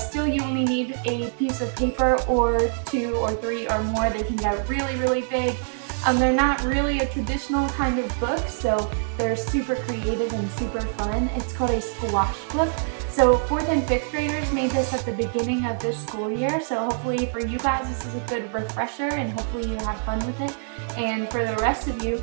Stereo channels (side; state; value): left; silent; digital silence